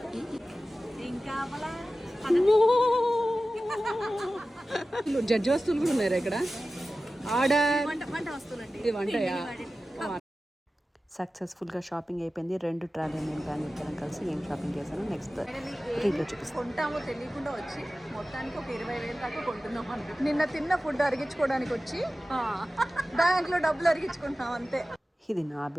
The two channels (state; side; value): normal; both; correlation 0.95